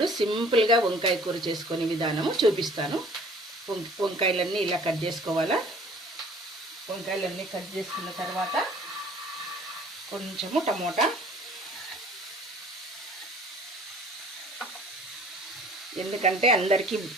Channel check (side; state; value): both; normal; correlation 0.52